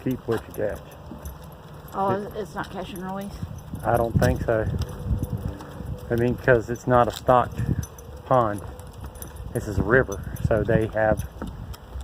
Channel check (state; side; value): identical; both; correlation 1.00